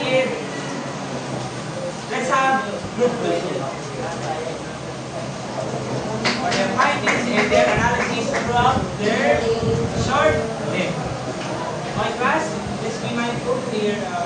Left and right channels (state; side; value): identical; both; correlation 1.00